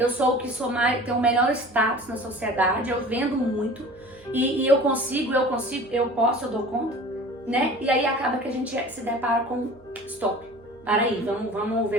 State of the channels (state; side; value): noise; right; hum, 27 dB below the sound